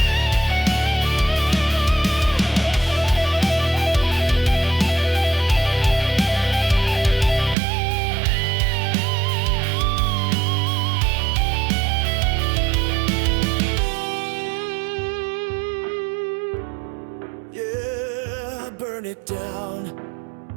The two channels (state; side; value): drops out; left; at 7.6 s